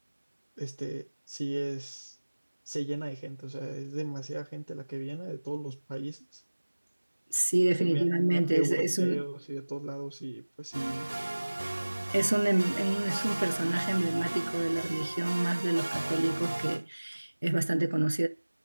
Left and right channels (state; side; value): inverted; both; correlation -1.00